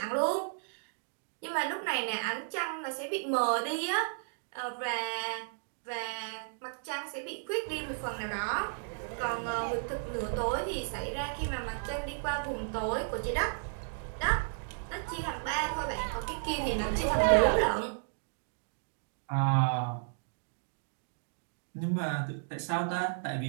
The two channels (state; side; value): silent; left; digital silence